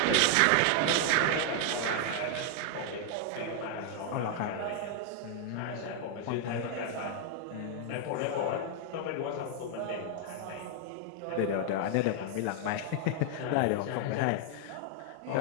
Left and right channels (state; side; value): different; both; correlation 0.00